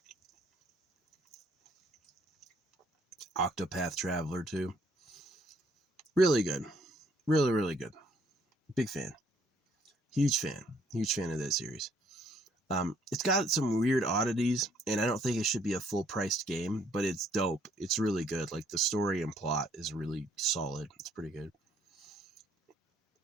Octopath Traveler too. Really good. Really, really good. Big fan. Huge fan. Huge fan of that series. It's got some weird oddities, and I don't think it should be a full-priced game, but it's dope. It's really good. Like, the story and plot is really solid. It's pretty good.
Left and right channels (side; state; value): both; normal; correlation 0.65